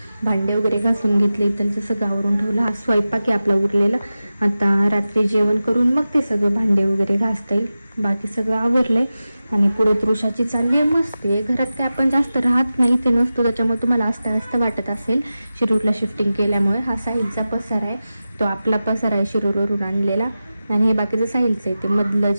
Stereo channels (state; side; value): inverted; both; correlation -0.94